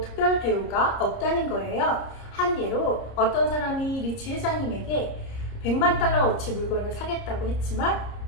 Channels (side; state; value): right; late; 30 ms